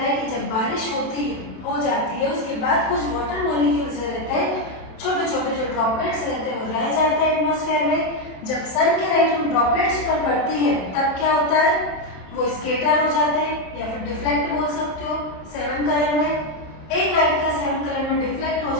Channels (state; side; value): late; right; 27 ms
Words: है कि जब बारिश हो जाती है, उसके बाद कुछ वाटर मॉलिक्यूल्स रहते हैं, छोटे छोटे जो ड्रॉपलेट्स रहते हैं, वो रह जाते हैं एटमॉस्फेयर में। जब सन की लाइट उन ड्रॉपलेट्स पर पड़ती है तब क्या होता है, वो स्केटर हो जाते हैं, या फिर डिफ्लेक्ट बोल सकते हो। 7 कलर में, एक लाइट का 7 कलर में डिफ्लेक्ट हो